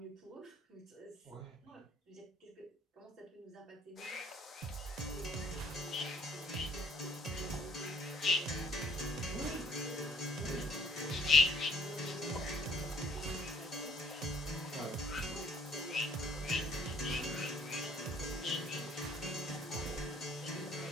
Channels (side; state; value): both; normal; correlation 0.58